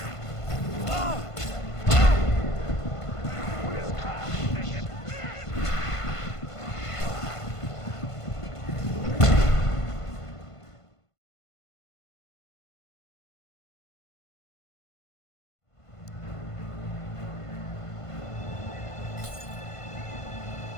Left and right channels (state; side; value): late; right; 1.5 ms